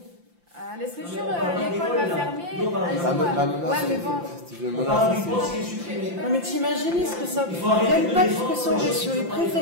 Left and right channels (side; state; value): left; late; 5.8 ms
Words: À l'Estréture, l'école va fermer. Ouais, mais bon. Non, mais t'imagines ce que ça. L'impact que ça aurait sur les